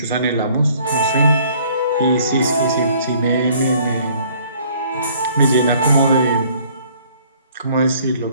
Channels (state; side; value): inverted; both; correlation -0.58